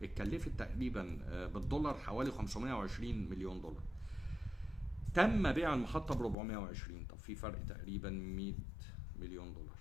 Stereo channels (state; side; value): drops out; right; at 6.4 s